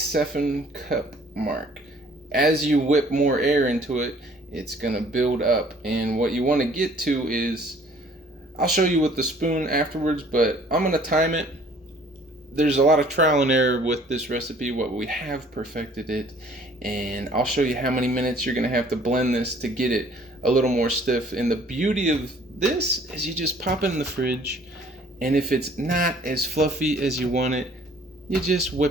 mark. As you whip more air into it, it's going to build up. And what you want to get to is, I'll show you with the spoon afterwards, but I'm going to time it. There's a lot of trial and error with this recipe, but we have perfected it, and I'll show you how many minutes you're gonna have to blend this to get it a little more stiff. And the beauty of this is you just pop it in the fridge, and if it's not as fluffy as you want it, you just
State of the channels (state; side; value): normal; both; correlation 0.56